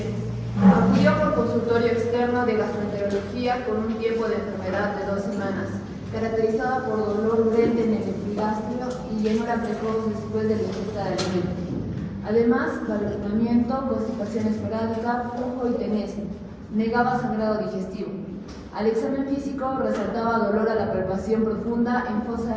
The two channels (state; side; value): identical; both; correlation 1.00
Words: Acudió por consultorio externo de gastroenterología con un tiempo de enfermedad de 2 semanas, caracterizada por dolor urente en el epigastrio y llenura precoz después de la ingesta de alimentos. Además, balonamiento, constipación esporádica, flujo y tenesmo. Negaba sangrado digestivo. Al examen físico resaltaba dolor a la palpación profunda en